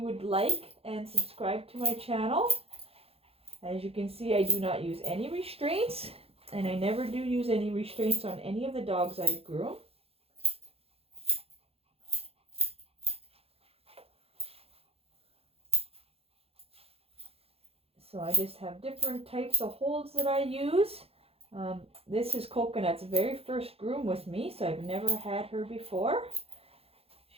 would like and subscribe to my channel. As you can see, I do not use any restraints, and I never do use any restraints on any of the dogs I groom. So I just have different types of holds that I use. This is Coconut's very first groom with me, so I've never had her before.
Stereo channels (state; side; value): late; left; 0.28 ms